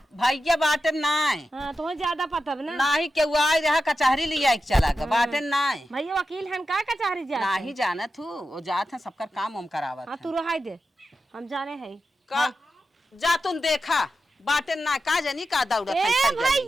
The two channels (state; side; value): normal; both; correlation 0.90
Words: भैया बाटन नाय हाँ तुम्हें ज्यादा पता है ना। नाही के आई रहा कचहरी लिया एक चला के बाटन नाय भैया वकील हन का कचहरी जा नाही जानत हूँ वो जात है सबका काम उम करावत हाँ है। तू रहाई दे हम जाने हैं। का जा तुम देखा बाटन ना का जनी का दौड़त ए है चल जानी।